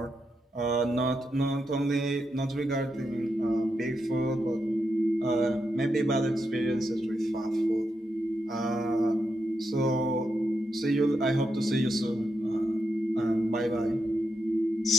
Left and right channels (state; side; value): normal; both; correlation 0.84